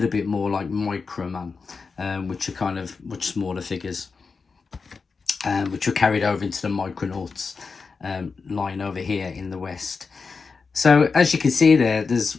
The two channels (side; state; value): right; quieter; 4.8 dB